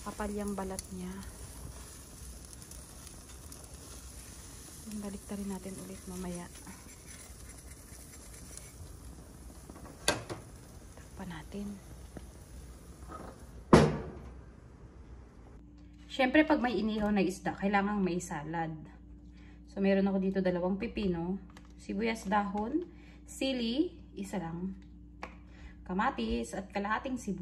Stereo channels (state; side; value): identical; both; correlation 1.00